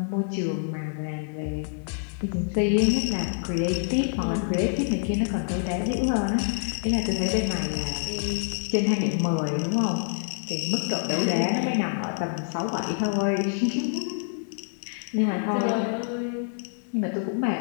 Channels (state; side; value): silent; right; 60 dB below the other